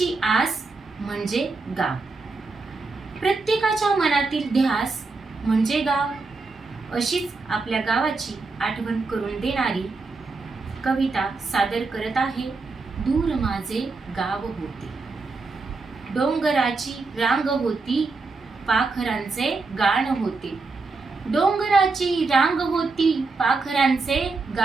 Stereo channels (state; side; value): quieter; left; 3.9 dB